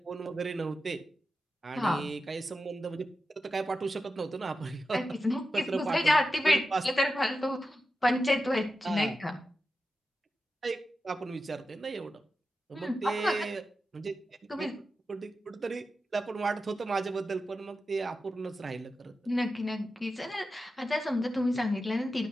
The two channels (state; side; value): normal; both; correlation 0.91